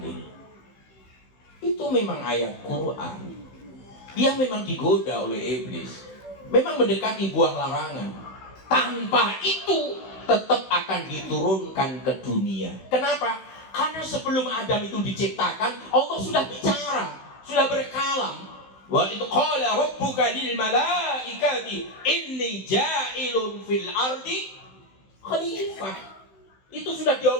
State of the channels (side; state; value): right; late; 16 ms